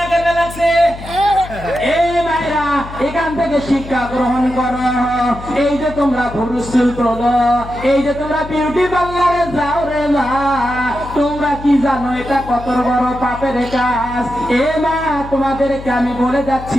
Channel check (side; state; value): left; noise; hum, 13 dB below the sound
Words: করতে লাগছে। এই মায়েরা, এখান থেকে শিক্ষা গ্রহণ করো। এই যে তোমরা ভুরু চুল তোলো, এই যে তোমরা বিউটি পার্লারে যাও রে মা, তোমরা কি জানো এটা কত বড় পাপের কাজ? এ মা, তোমাদেরকে আমি বলে যাচ্ছি